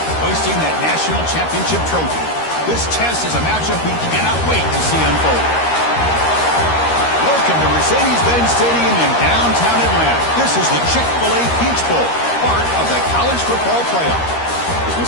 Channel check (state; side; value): late; right; 13 ms